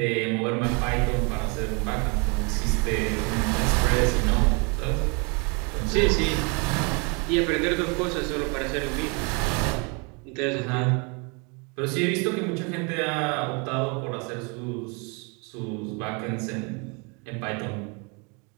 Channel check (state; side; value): quieter; left; 32.6 dB